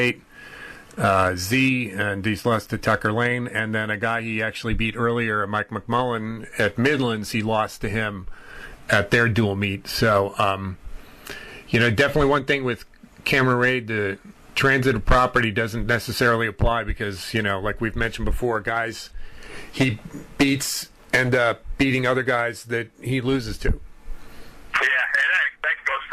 Z, and he's lost to Tucker Lane, and then a guy he actually beat earlier, Mike McMullen, at Midlands, he lost to him at their dual meet. So, you know, definitely one thing with Cameron Wade, the transitive property doesn't necessarily apply because, you know, like we've mentioned before, guys he beats end up beating other guys that he loses to. Yeah, and that goes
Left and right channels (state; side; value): identical; both; correlation 1.00